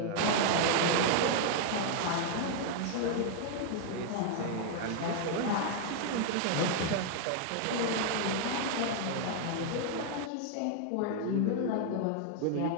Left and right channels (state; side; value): different; both; correlation 0.00